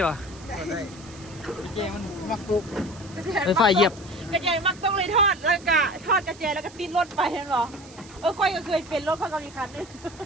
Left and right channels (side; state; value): right; noise; hiss, 21 dB below the sound